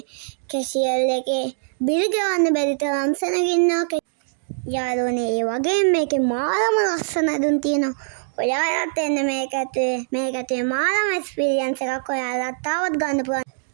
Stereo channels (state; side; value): silent; left; digital silence